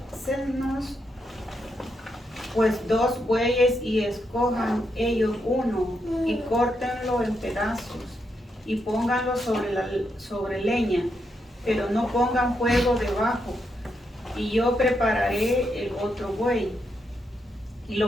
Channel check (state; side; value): normal; both; correlation 0.81